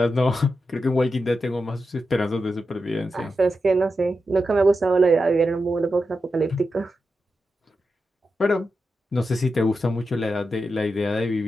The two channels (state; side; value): normal; both; correlation 0.89